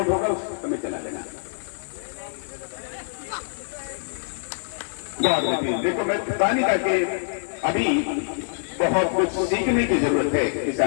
होगा उस समय चला लेना। बहुत बेहतरीन। देखो मैं बता नहीं था कि अभी बहुत कुछ सीखने की जरूरत है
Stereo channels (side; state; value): right; silent; digital silence